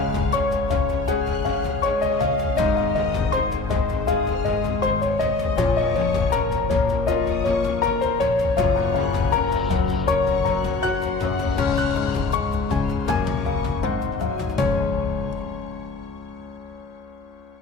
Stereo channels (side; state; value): right; quieter; 3.3 dB